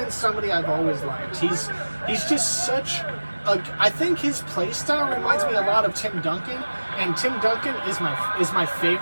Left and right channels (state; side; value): inverted; both; correlation -1.00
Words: somebody I've always liked. He's just such a... I think his play style reminds me a lot of Tim Duncan. And Tim Duncan is my